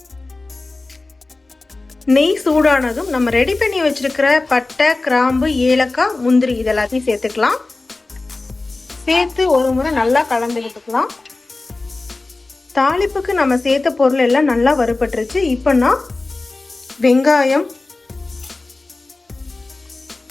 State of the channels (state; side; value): quieter; right; 3.3 dB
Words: நெய் சூடானதும் நம்ம ரெடி பண்ணி வச்சிருக்கிற பட்டை, கிராம்பு, ஏலக்காய், முந்திரி இதெல்லாத்தையும் சேர்த்துக்கலாம். சேர்த்து ஒரு முறை நல்லா கலந்து விட்டுக்கலாம். தாளிப்புக்கு நம்ம சேர்த்த பொருள் எல்லாம் நல்லா வறுபட்டுருச்சு. இப்போ நான் வெங்காயம்,